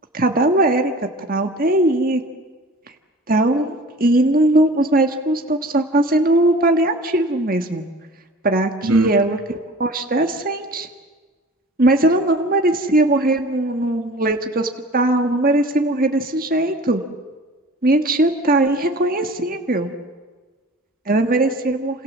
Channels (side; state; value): both; normal; correlation 0.42